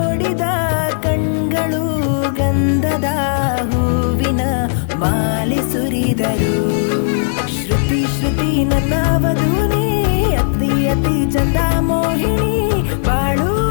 ಕಣ್ಗಳು ಗಂಧದ ಹೂವಿನ ಮಾಲೆ ಸುರಿದರು. ಶ್ರುತಿ ಶ್ರುತಿ ನನ್ನ ವಧುನೇ, ಅತಿ ಅತಿ ಚಂದ ಮೋಹಿನಿ, ಬಾಳು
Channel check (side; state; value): right; silent; digital silence